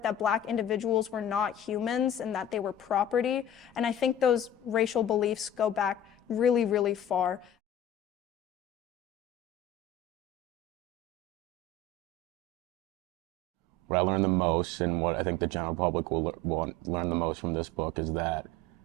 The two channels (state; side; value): normal; both; correlation 0.36